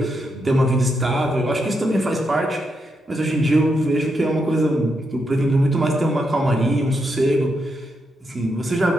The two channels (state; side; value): normal; both; correlation 0.82